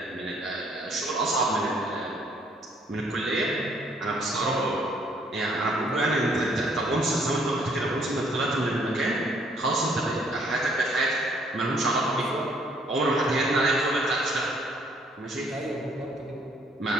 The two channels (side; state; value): both; normal; correlation 0.64